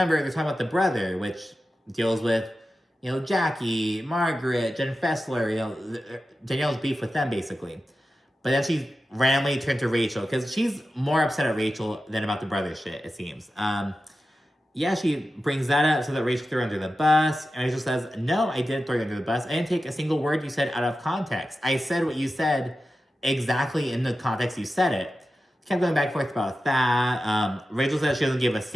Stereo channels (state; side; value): normal; both; correlation 0.93